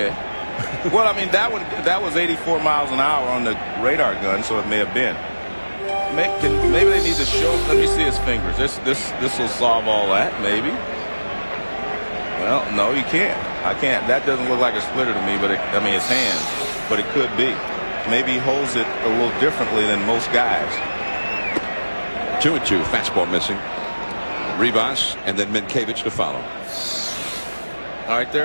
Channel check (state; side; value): inverted; both; correlation -1.00